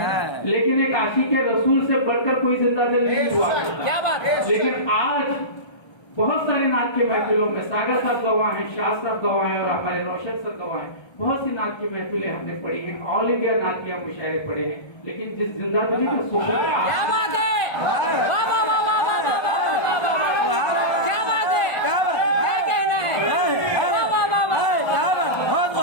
लेकिन एक आशिक रसूल से बढ़कर कोई जिंदा दिल नहीं हुआ। क्या बात है। लेकिन आज बहुत सारे नात के महफिलों में सागर साहब गवाह हैं, शाह साहब गवाह हैं और हमारे रोशन सर गवाह हैं। बहुत सी नात की महफिलें हमने पढ़ी हैं, ऑल इंडिया नातिया मुशायरे पढ़े हैं, लेकिन जिस जिंदा दिली का सुकून, क्या बात है, वाह वाह वाह वाह वाह वाह वाह, क्या बात है, क्या कहना है, वाह वाह वाह वाह।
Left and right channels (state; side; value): late; right; 1.3 ms